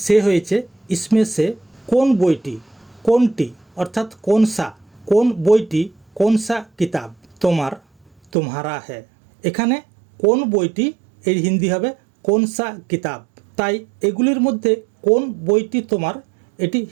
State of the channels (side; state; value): left; drops out; at 8.3 s